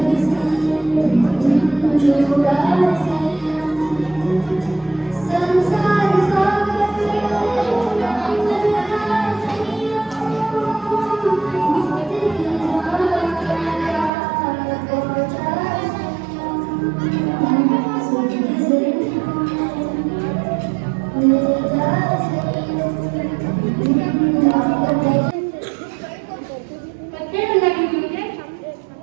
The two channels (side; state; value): left; drops out; at 14.1 s